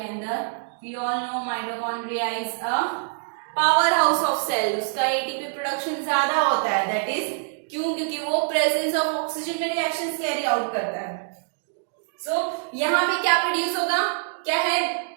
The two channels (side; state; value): left; silent; digital silence